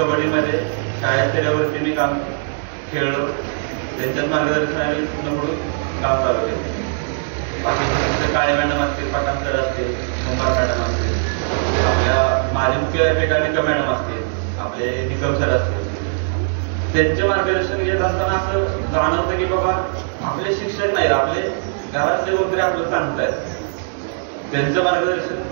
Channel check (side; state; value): left; silent; digital silence